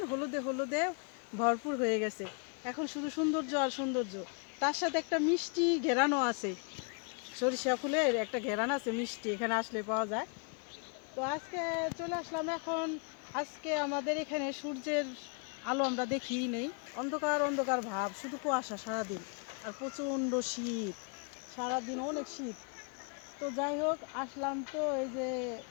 হলুদে হলুদে ভরপুর হয়ে গেছে। এখন শুধু সৌন্দর্য আর সৌন্দর্য, তার সাথে একটা মিষ্টি ঘেরানো আছে। সরিষা ফুলের একটা ঘেরান আছে মিষ্টি, এখানে আসলে পাওয়া যায়। তো আজকে চলে আসলাম এখন। আজকে আমাদের এখানে সূর্যের আলো আমরা দেখিই নেই, অন্ধকার অন্ধকার ভাব, শুধু কুয়াশা সারাদিন, আর প্রচণ্ড শীত, সারাদিন অনেক শীত। তো যাই হোক, আসলাম তো এই যে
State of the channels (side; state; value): right; quieter; 38.9 dB